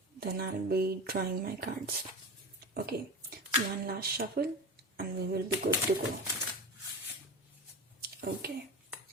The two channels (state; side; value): normal; both; correlation 0.27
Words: I'll be drawing my cards. Okay, one last shuffle and we will be good to go. Okay,